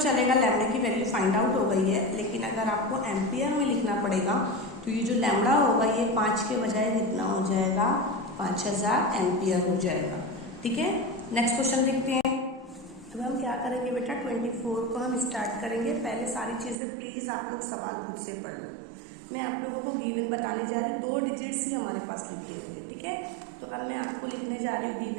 चलेगा, लैम्बडा की वैल्यू फाइंड आउट हो गई है, लेकिन अगर आपको एम्पियर में लिखना पड़ेगा तो ये जो लैम्बडा होगा ये 5 के बजाय कितना हो जाएगा, 5000 एम्पियर हो जाएगा। ठीक है, नेक्स्ट क्वेश्चन देखते हैं। अब हम क्या करेंगे बेटा, 24 को हम स्टार्ट करेंगे। पहले सारी चीज़ें प्लीज़ आप लोग सवाल खुद से पढ़ लो। मैं आप लोगों को गिवन बताने जा रही हूँ, 2 डिजिट्स ही हमारे पास लिखे हुए। ठीक है, तो अब मैं आपको लिखने जा रही हूँ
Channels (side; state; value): left; drops out; at 16.8 s